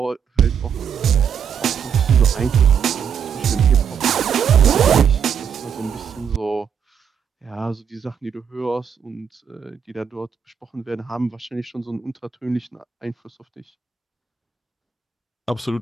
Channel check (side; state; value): left; quieter; 7.3 dB